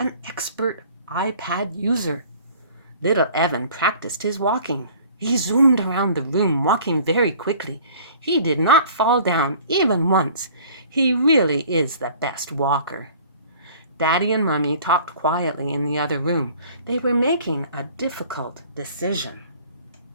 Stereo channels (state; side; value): inverted; both; correlation -0.50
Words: expert iPad user. Little Evan practiced his walking. He zoomed around the room, walking very quickly. He did not fall down even once. He really is the best walker. Daddy and Mommy talked quietly in the other room. They were making a difficult decision.